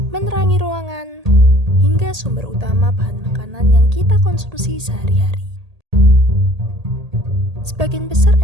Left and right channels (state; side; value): late; left; 1.8 ms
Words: menerangi ruangan, hingga sumber utama bahan makanan yang kita konsumsi sehari-hari. Sebagian besar